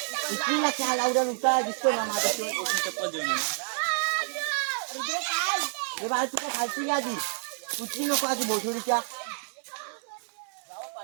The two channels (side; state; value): left; silent; digital silence